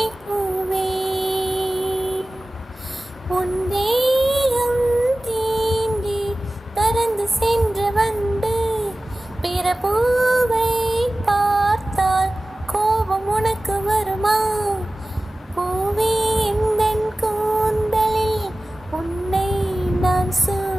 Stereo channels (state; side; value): normal; both; correlation 0.97